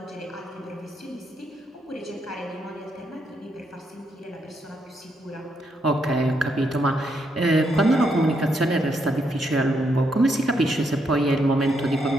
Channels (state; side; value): normal; both; correlation 0.77